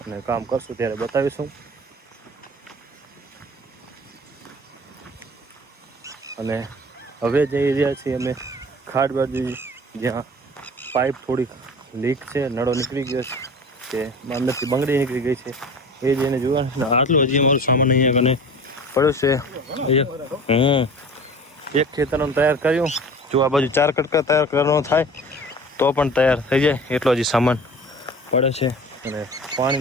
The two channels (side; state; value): both; normal; correlation 0.39